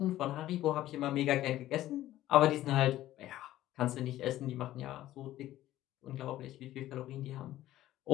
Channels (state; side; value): quieter; right; 14.3 dB